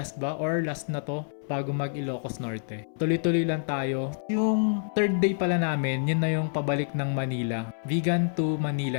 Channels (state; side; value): silent; right; 60 dB below the other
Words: ba or last na to bago mag Ilocos Norte. Tuloy-tuloy lang tayo. Yung third day pala namin, yun na yung pabalik ng Manila. Vegan to